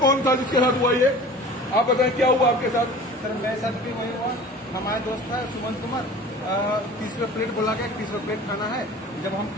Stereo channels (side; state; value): both; normal; correlation 0.41